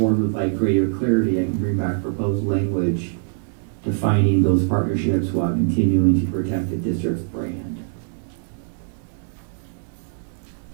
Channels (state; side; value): silent; left; 64 dB below the other